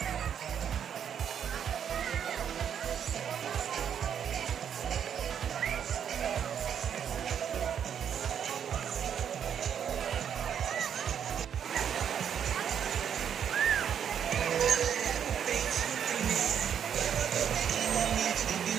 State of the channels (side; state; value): left; quieter; 8.4 dB